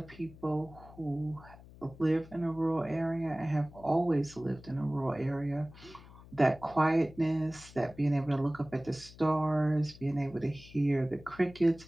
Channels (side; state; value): left; noise; hum, 20 dB below the sound